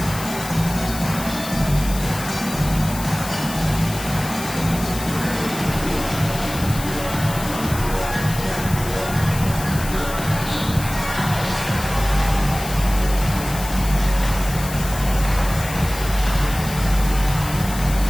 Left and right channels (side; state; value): left; noise; hiss, 10 dB below the sound